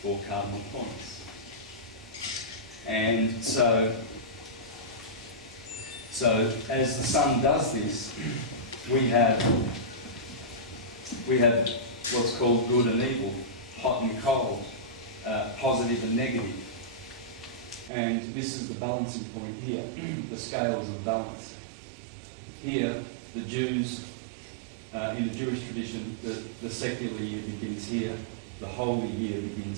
4 cardinal points. And so as the sun does this, we have what's called good and evil, hot and cold, positive and negative. And this is the balancing point here, the scales of balance. Here, the Jews, in the Jewish tradition, the secular year begins here, the holy year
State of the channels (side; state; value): left; drops out; at 17.9 s